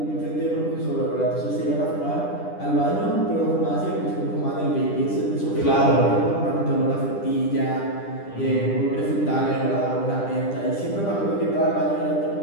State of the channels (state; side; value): late; right; 10 ms